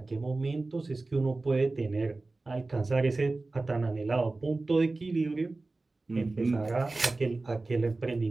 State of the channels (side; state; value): left; quieter; 3.3 dB